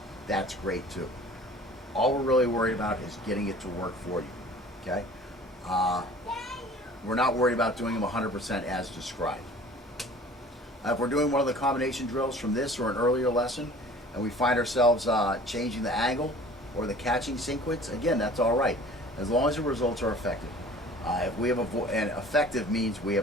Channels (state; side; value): normal; both; correlation 0.47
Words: that's great too. All we're really worried about is getting it to work for you, okay? We're not worried about doing them 100% as described. If we're doing one of the combination drills from this or an earlier lesson, and we find ourselves changing the angle or the catching sequence, again, that's all right, as long as the results are effective. If we have and effective means we